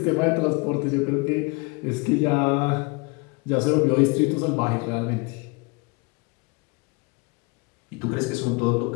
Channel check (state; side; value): quieter; right; 28.5 dB